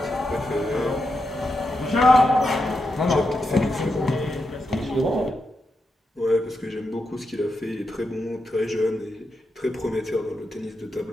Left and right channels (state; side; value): normal; both; correlation 0.86